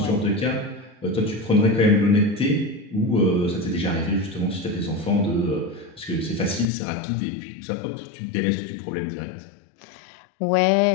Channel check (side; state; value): right; drops out; at 6.7 s